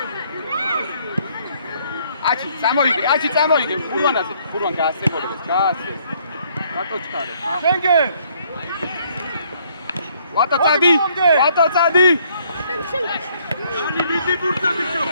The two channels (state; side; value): inverted; both; correlation -0.65